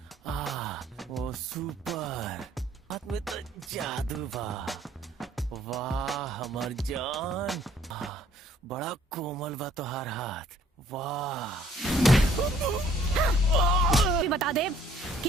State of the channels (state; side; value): normal; both; correlation 0.60